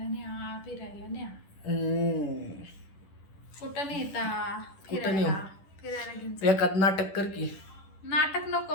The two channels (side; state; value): right; late; 10 ms